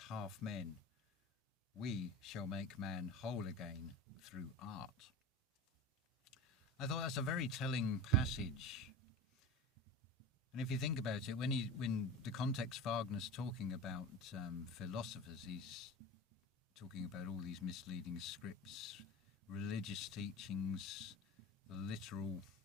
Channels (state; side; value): normal; both; correlation 0.31